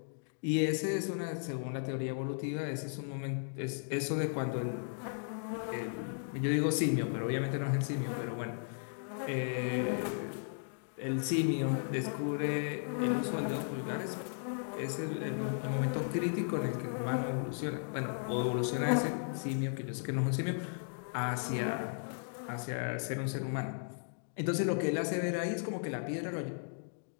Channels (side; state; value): right; silent; digital silence